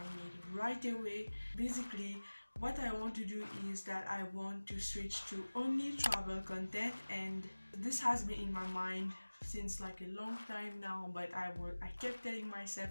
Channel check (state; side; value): inverted; both; correlation -1.00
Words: made right away. Basically, what I want to do is that I want to switch to only travel content, and this has been in my mind since like a long time now, but I kept telling